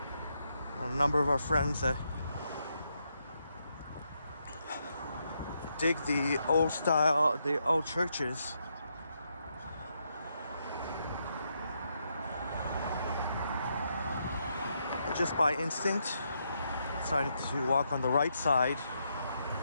A number of our friends that dig the old style, the old churches. Just by instinct, decided to walk on the right side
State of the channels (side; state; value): both; inverted; correlation -0.80